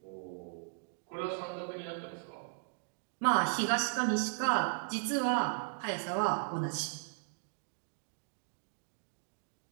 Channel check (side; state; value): left; silent; digital silence